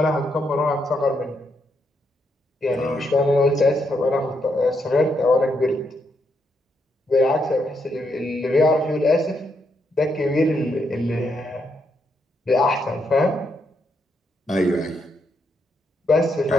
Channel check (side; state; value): both; normal; correlation 0.79